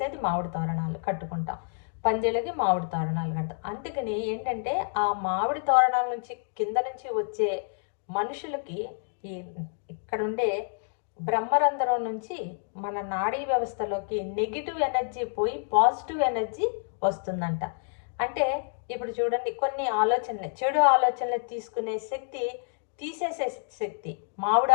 మామిడి తోరణాలు కట్టుకుంటాం. పందిళ్ళకి మామిడి తోరణాలు కడతాం. అందుకని ఏంటంటే, ఆ మామిడి తోరణాల నుంచి కింద నుంచి వచ్చే మనుషులకి ఇక్కడ ఉండే బ్రహ్మరంధ్రం నుంచి మన నాడీ వ్యవస్థలోకి నెగిటివ్ ఎనర్జీ పోయి పాజిటివ్ ఎనర్జీ వస్తుందంట. అంటే ఇప్పుడు చూడండి, కొన్ని ఆలోచనలు, చెడు ఆలోచనలు తీసుకునే శక్తి, తీసేసే శక్తి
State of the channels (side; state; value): right; silent; digital silence